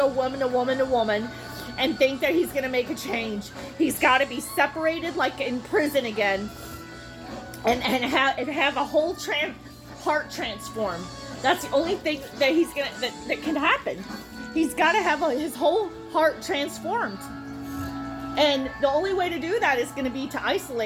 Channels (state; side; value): identical; both; correlation 1.00